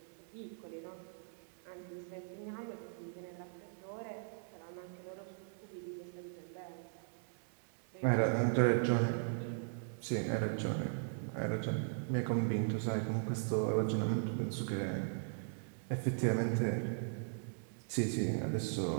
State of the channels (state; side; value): silent; left; digital silence